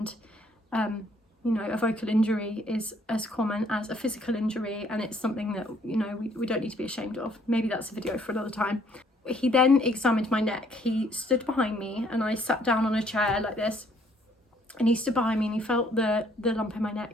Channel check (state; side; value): normal; both; correlation 0.64